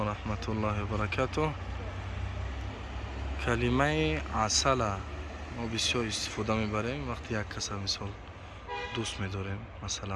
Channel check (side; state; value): both; identical; correlation 1.00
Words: الله وبركاته. کلمه عسل ما بسیار استفاده میبریم وقتی یک کس مثال دوست میداریم،